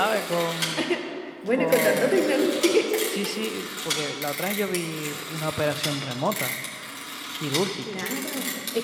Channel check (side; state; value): both; identical; correlation 1.00